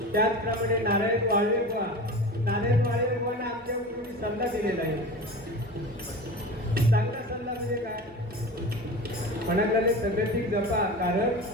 त्याचप्रमाणे नारायण वाळवे बुवा, नारायण वाळवे बुवांना आमच्या गुरुंनी सल्ला दिलेला आहे. चांगला सल्ला म्हणजे काय म्हणाले सगळ्यातील जपा. कारण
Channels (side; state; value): both; normal; correlation 0.32